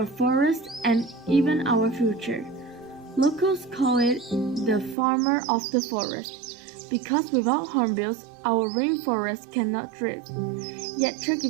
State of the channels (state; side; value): drops out; left; at 5.0 s